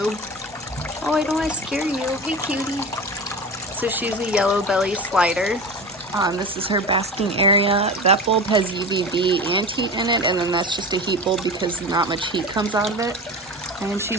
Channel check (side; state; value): both; normal; correlation 0.30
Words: Oh, I don't want to scare you. Hey, cutie. So she's a yellow belly slider. This is her basking area. That bulb has UVB and heat in it, and then that's just a heat bulb because not much heat comes out of it. And